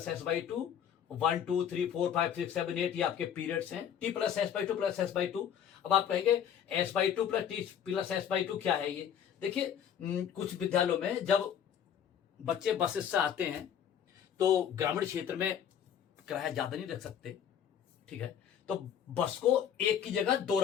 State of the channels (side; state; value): right; quieter; 8.9 dB